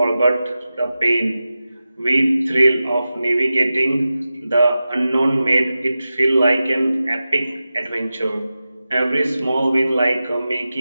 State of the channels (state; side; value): inverted; both; correlation -0.94